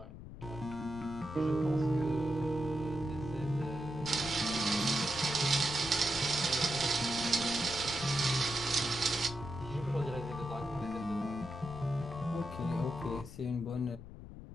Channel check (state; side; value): noise; left; rumble, 13 dB below the sound